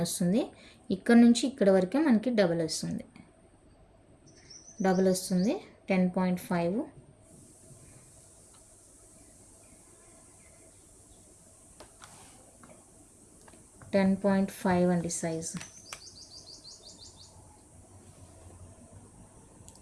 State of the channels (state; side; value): identical; both; correlation 1.00